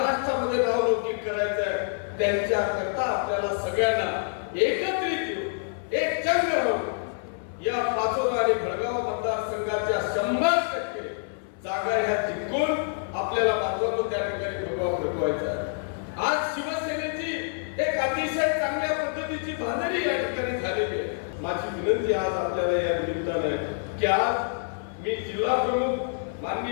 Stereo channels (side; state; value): right; silent; 60 dB below the other